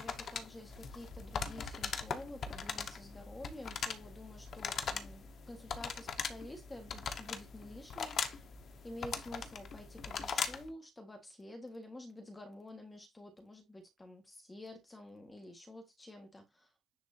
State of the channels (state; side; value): quieter; right; 5.0 dB